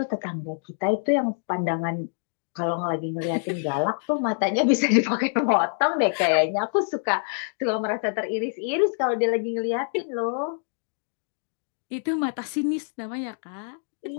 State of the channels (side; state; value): right; silent; 61 dB below the other